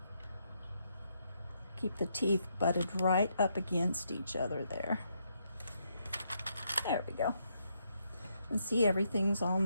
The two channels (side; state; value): both; inverted; correlation -0.77